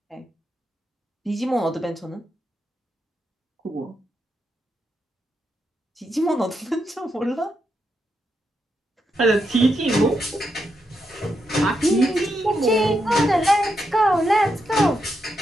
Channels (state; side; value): normal; both; correlation 0.83